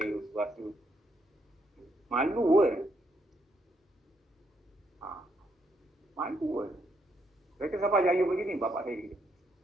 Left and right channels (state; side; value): normal; both; correlation 0.76